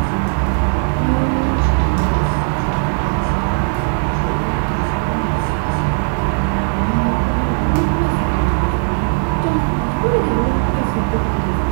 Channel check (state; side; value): silent; left; digital silence